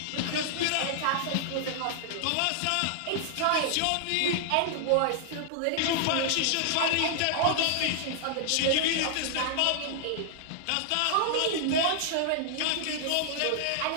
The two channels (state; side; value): different; both; correlation -0.01